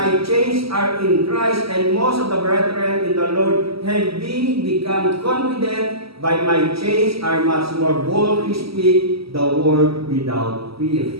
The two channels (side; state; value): left; late; 0.76 ms